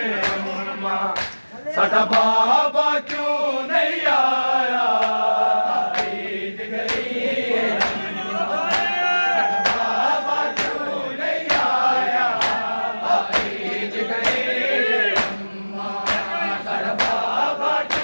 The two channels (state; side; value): inverted; both; correlation -1.00